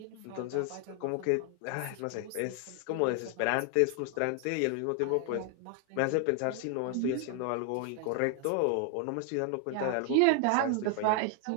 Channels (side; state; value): both; different; correlation 0.00